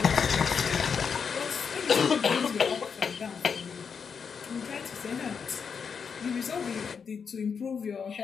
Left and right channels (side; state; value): right; quieter; 6.2 dB